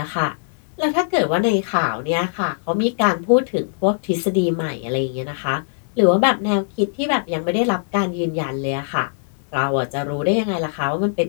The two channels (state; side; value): silent; right; 64 dB below the other